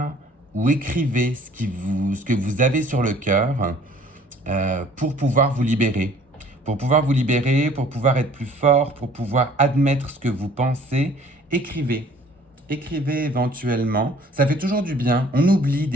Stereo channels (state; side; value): normal; both; correlation 0.54